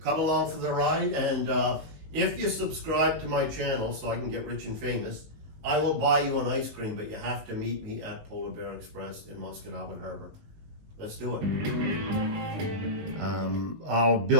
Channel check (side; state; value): left; late; 19 ms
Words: along for the ride. And if you subscribe to my channel so I can get rich and famous, I will buy you an ice cream, but you have to meet me at Polar Bear Express in Musquodoboit Harbour. Let's do it. I'll